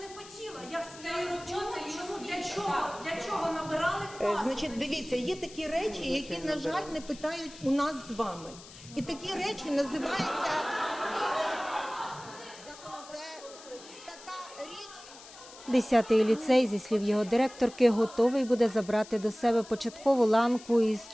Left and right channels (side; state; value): left; noise; hiss, 18 dB below the sound